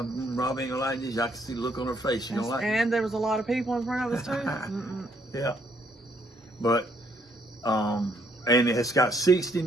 ain't gonna like this. I can see the look on her face. She don't like it. And there was a lot of people in front of us too. Yeah. But, and it's got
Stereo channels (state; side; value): normal; both; correlation 0.69